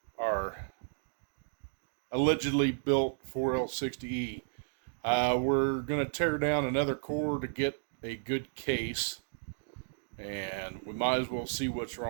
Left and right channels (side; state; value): left; silent; digital silence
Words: allegedly built 4L60E. We're going to tear down another core to get a good case, and we might as well see what's